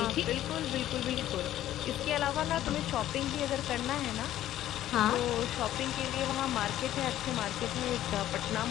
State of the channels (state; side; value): quieter; right; 13.0 dB